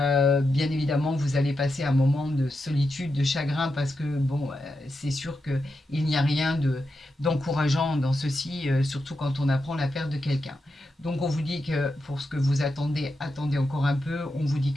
évidemment, vous allez passer un moment de solitude, de chagrin, parce que bon, c'est sûr qu'il n'y a rien d'encourageant dans ceci, surtout quand on apprend la perte de quelqu'un. Donc on vous dit que pour ce que vous attendez, attendez encore un peu. On vous dit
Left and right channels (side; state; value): both; normal; correlation 0.87